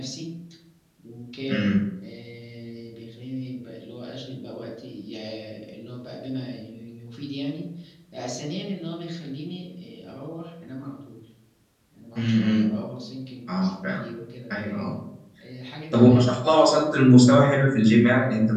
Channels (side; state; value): both; identical; correlation 1.00